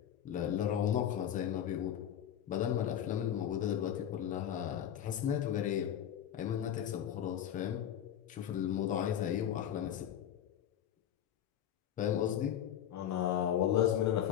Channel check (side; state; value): right; quieter; 10.2 dB